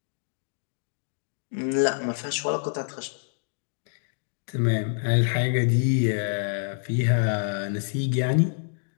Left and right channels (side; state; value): right; silent; digital silence